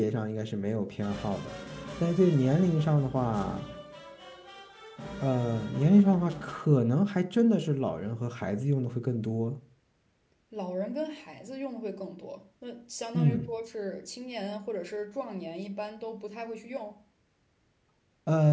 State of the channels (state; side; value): identical; both; correlation 1.00